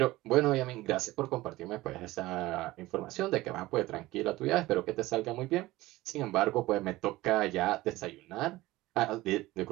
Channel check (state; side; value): quieter; left; 18.3 dB